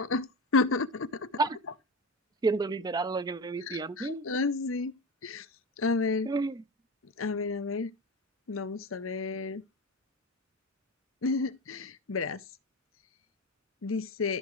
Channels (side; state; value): both; normal; correlation 0.23